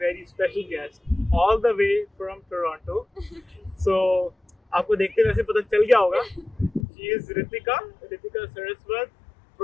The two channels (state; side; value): drops out; right; at 6.9 s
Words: special guest all the way from Toronto. So, आपको देखते वैसे पता चल गया होगा. She is Ritika Saraswat